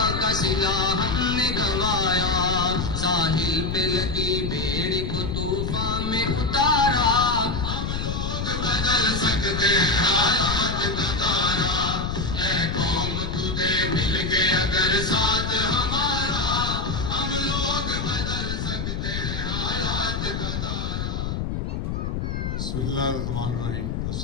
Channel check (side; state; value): left; noise; rumble, 3 dB below the sound